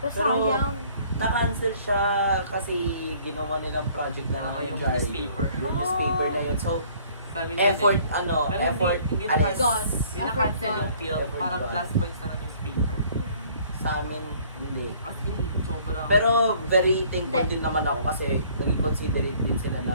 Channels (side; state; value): both; inverted; correlation -0.57